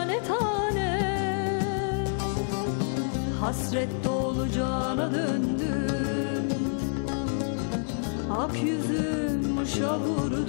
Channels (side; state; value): right; silent; digital silence